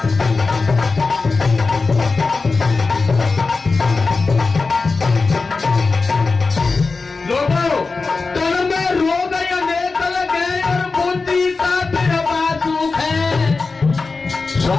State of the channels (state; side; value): quieter; right; 4.1 dB